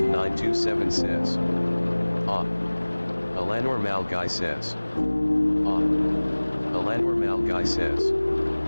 says. Alanor Malgai says. Alanor Malgai says.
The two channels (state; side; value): inverted; both; correlation -1.00